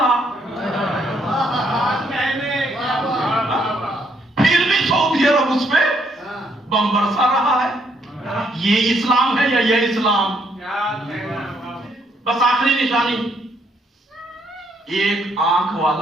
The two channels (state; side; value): normal; both; correlation 0.71